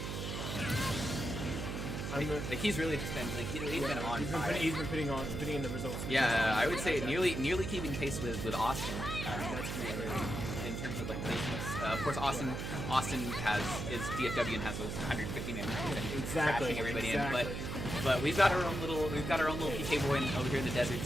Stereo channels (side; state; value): right; noise; hum, 4 dB below the sound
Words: Like he's really just been he's been on fire. He's been putting in the results. Yeah, I would say nearly keeping pace with Austin. That's really in terms of like placements. Of course, Austin is DFW and has those 150 man weeklies that he's crashing everybody in. But we've got our own little PK boy over here in the desert